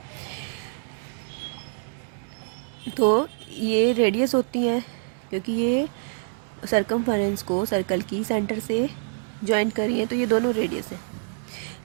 तो ये रेडियस होती है, क्योंकि ये सरकमफेरेंस को सर्कल की सेंटर से जॉइंट करी है, तो ये दोनों रेडियस है,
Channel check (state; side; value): silent; left; digital silence